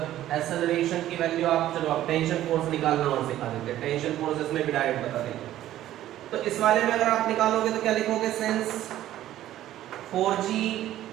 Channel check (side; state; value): left; quieter; 13.3 dB